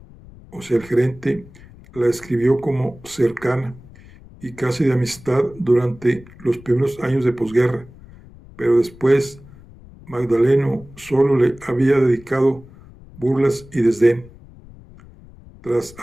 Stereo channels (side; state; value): left; noise; rumble, 21 dB below the sound